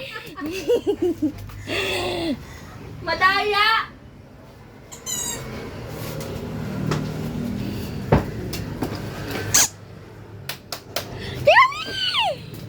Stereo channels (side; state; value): both; identical; correlation 1.00